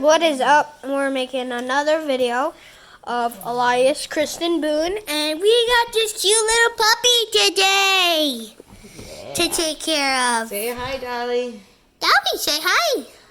is up? We're making another video of Elias Kristen Boone, and we got this cute little puppy today to take care of. Say hi, Dolly. Dolly, say hi.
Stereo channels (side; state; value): both; identical; correlation 1.00